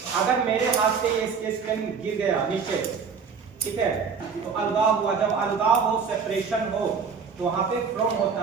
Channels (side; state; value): left; quieter; 5.8 dB